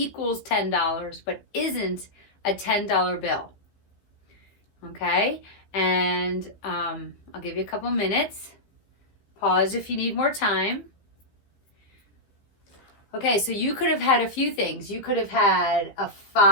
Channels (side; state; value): right; late; 15 ms